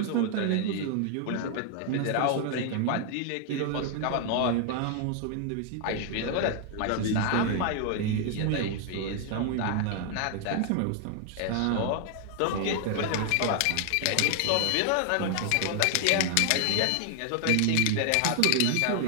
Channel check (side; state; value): both; different; correlation 0.00